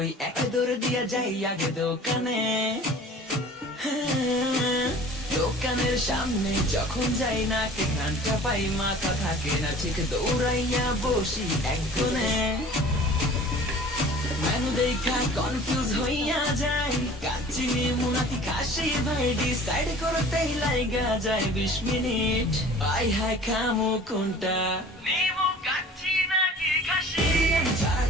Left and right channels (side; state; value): both; normal; correlation 0.45